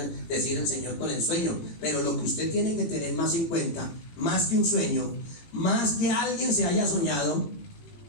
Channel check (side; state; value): right; late; 18 ms